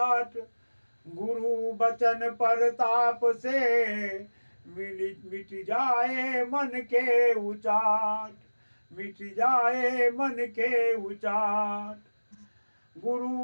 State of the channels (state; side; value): inverted; both; correlation -1.00